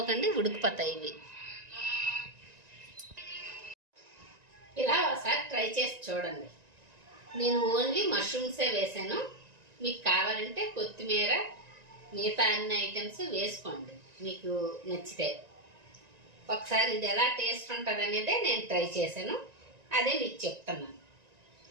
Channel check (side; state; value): left; late; 1.9 ms